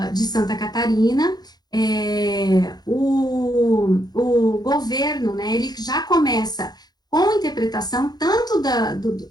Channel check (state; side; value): late; right; 0.19 ms